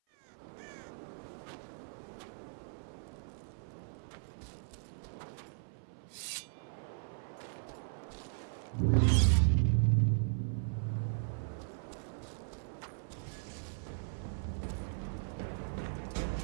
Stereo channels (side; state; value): left; silent; 53 dB below the other